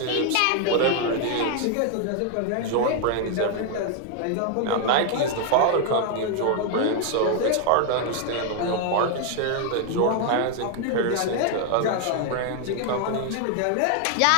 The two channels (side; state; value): both; different; correlation 0.00